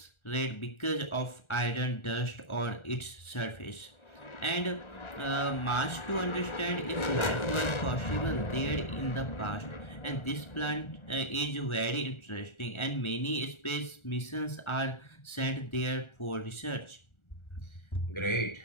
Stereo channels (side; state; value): right; late; 1.4 ms